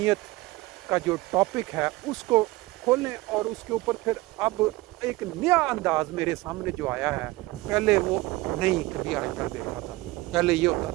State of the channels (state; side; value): quieter; left; 20.5 dB